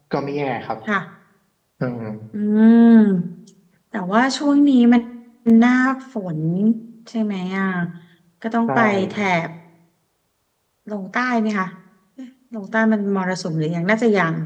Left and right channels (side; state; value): both; identical; correlation 1.00